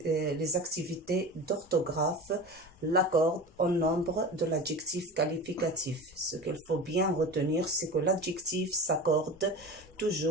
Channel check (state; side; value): normal; both; correlation 0.31